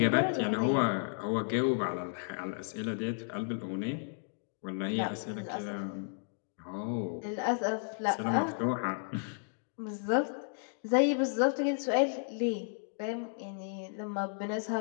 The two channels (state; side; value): silent; right; digital silence